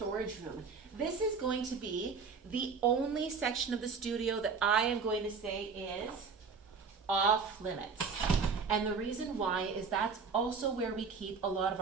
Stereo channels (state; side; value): quieter; left; 5.3 dB